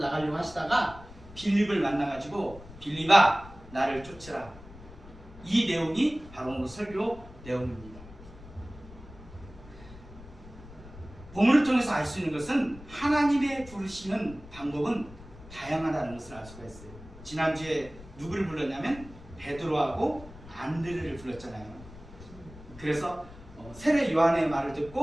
하시다가 빌립을 만나가지고 빌립아 나를 쫓으라. 이 내용이 바로 오늘 설교 내용입니다. 본문을 통해서 알 수 있는 것은 하나님의 부르시는 방법은 다양하다는 것을 알 수가 있어요. 지난주에 누구를 불렀냐면 베드로하고 안드레를 불렀잖아요. 그래서 세례 요한의 말을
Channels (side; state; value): left; noise; rumble, 18 dB below the sound